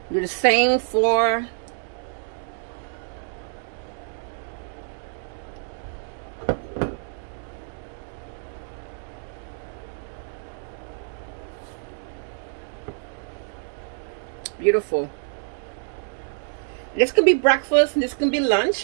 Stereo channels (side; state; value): left; silent; 61 dB below the other